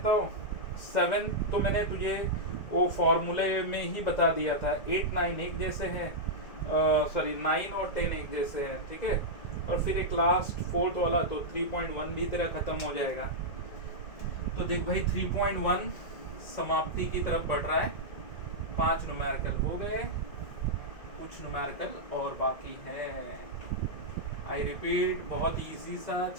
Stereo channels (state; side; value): late; right; 2.1 ms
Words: हूँ, 7 तो मैंने तुझे वो फॉर्मूले में ही बता दिया था, 8 9 एक जैसे हैं, सॉरी 9 और 10 एक जैसे हैं, ठीक है, और फिर एक लास्ट 4th वाला तो 3.1 भी तेरा खत्म हो जाएगा। तो देख भाई 3.1 समाप्ति की तरफ बढ़ रहा है, 5 न्यूमेरिकल हो गए, कुछ न्यूमेरिकल और बाकी है। आई रिपीट बहुत इजी सा